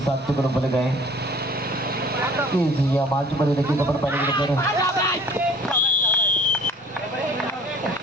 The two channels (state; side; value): normal; both; correlation 0.50